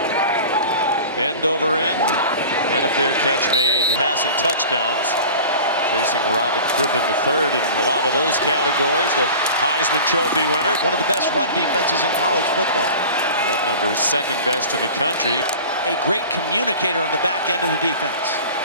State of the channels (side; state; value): both; inverted; correlation -0.39